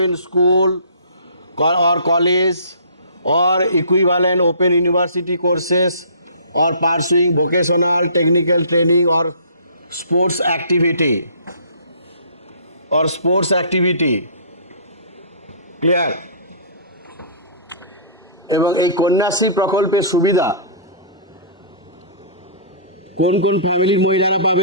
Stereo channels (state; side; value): inverted; both; correlation -0.46